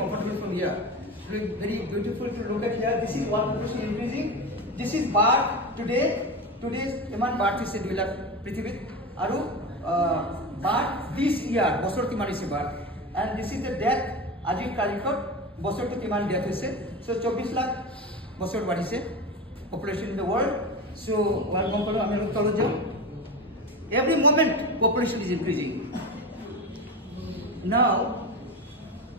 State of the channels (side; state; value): both; normal; correlation 0.24